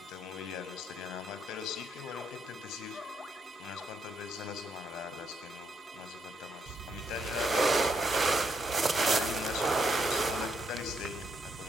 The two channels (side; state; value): both; normal; correlation 0.75